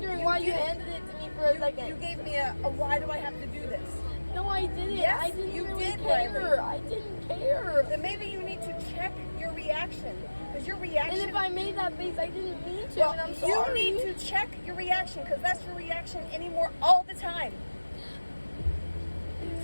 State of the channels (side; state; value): both; inverted; correlation -1.00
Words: you why you did. handed it to me for a second. you gave me a why do I have to do this? No, I didn't. Yes, I didn't you really did, care. Riley. I didn't care. Then maybe you need to check your reaction. Because your reaction... And if I made that face, I didn't mean to, well, and I'm you sorry. need to check your reaction because that's your reaction anymore all the time.